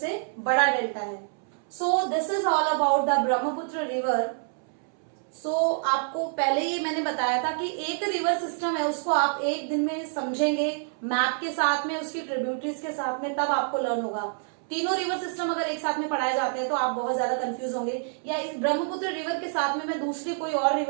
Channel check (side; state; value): left; silent; 60 dB below the other